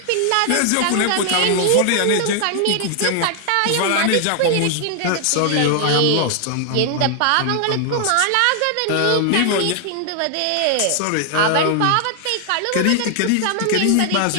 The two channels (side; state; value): both; different; correlation 0.00